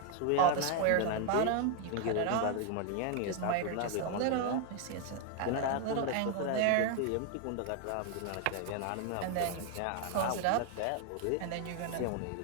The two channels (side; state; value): both; different; correlation 0.00